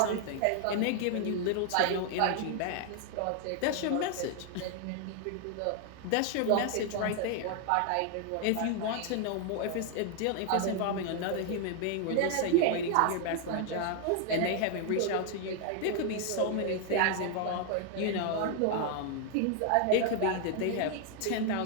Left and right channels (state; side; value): different; both; correlation 0.00